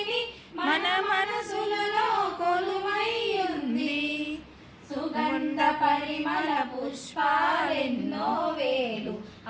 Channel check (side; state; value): both; identical; correlation 1.00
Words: మన మనసులలో కొలువైయుంది. సుగంధ పరిమళ పుష్పాలెన్నో వేలు